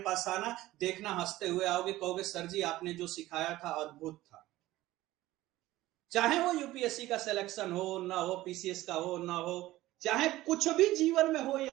पास आना, देखना हंसते हुए आओगे, कहोगे सर जी आपने जो सिखाया था अद्भुत था। चाहे वो यूपीएससी का सिलेक्शन हो ना हो, पीसीएस का हो ना हो, चाहे कुछ भी जीवन में हो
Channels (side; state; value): left; quieter; 16.6 dB